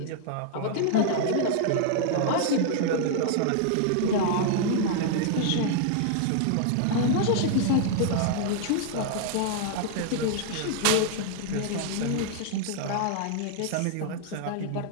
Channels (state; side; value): different; both; correlation -0.01